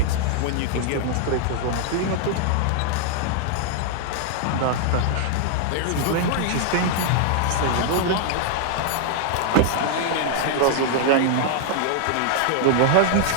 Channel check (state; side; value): different; both; correlation 0.00